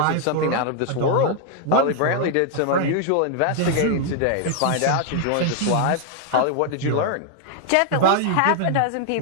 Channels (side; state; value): both; different; correlation 0.00